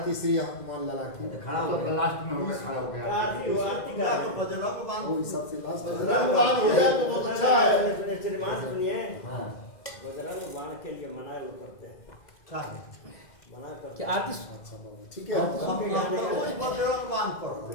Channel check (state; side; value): late; right; 2.0 ms